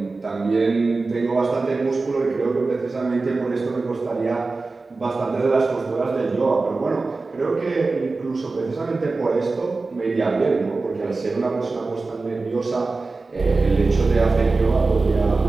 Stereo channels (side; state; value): left; quieter; 3.7 dB